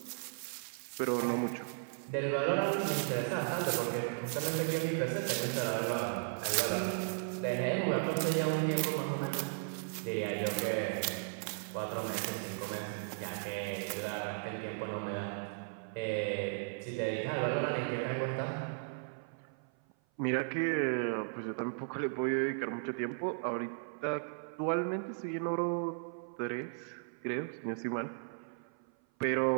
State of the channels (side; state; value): left; silent; 54 dB below the other